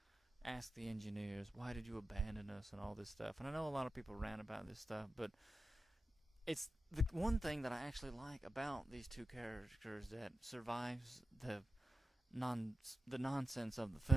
the engineers, why did you abandon us and all this stuff. And I know a lot of people rant about this stuff, but it's the one thing that I actually like about these two characters that survives the nonsense of the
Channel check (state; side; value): normal; both; correlation 0.90